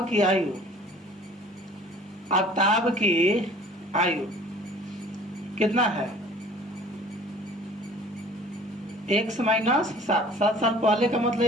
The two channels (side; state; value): both; normal; correlation 0.49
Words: की आयु, आफ्ताब की आयु कितना है, x माइनस 7, 7 साल पहले का